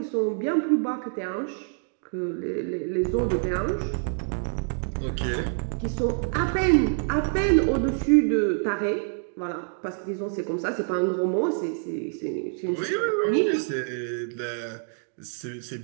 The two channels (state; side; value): silent; left; digital silence